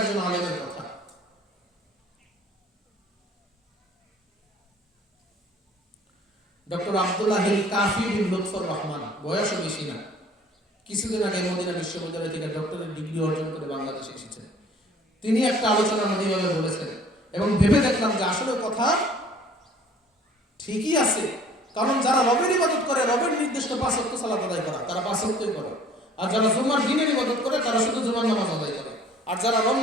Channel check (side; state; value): both; normal; correlation 0.53